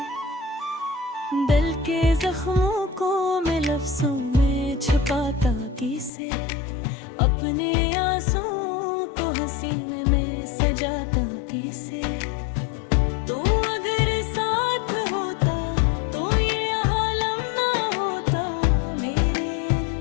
दिल के जख्मों को मैं लफ्ज़ों में छुपाता किसे, अपने आंसुओं को हंसी में सजाता किसे। तो अगर साथ होता तो ये आलम ना होता, मेरे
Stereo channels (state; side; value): drops out; right; at 6.1 s